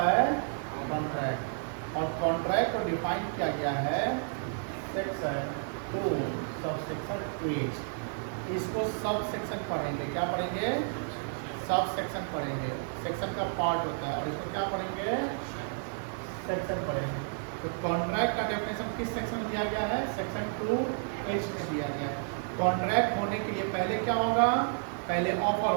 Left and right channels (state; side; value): silent; left; 55 dB below the other